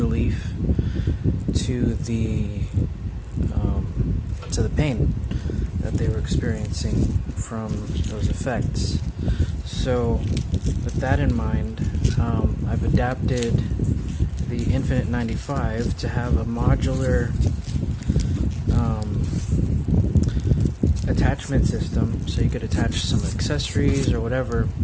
to the pain that they were experiencing from those effects. So with that in mind, I've adapted the Infinite 95 to have a modular attachment system, so you could attach some accessories or whatever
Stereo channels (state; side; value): identical; both; correlation 1.00